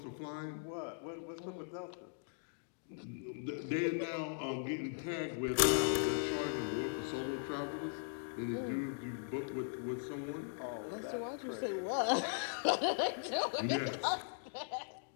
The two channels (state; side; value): silent; right; digital silence